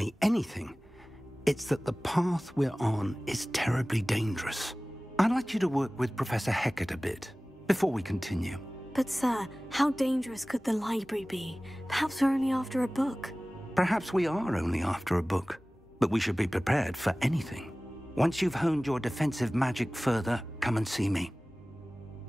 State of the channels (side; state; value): both; normal; correlation 0.98